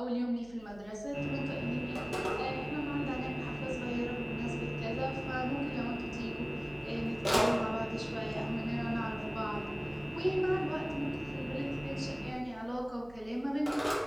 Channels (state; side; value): noise; right; hum, 22 dB below the sound